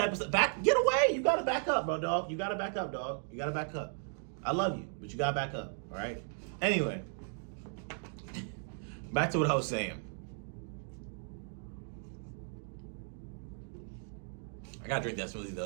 of stuff. Get away. You got to back up, bro, dog. You got to back up, dog. You got to back up. I love you, but you got to back up, all right? Anyway, back to what I was saying. I got to drink that smoothie,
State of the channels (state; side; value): silent; left; 54 dB below the other